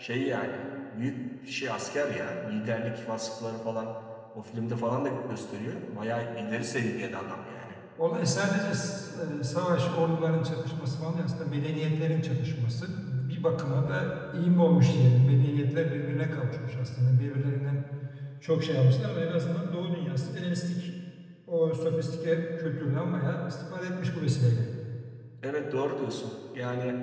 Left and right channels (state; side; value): identical; both; correlation 1.00